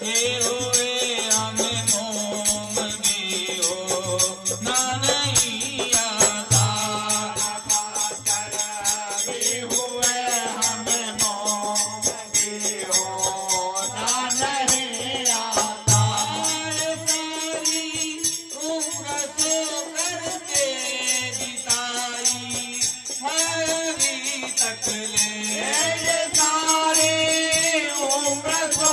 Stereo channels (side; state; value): both; identical; correlation 1.00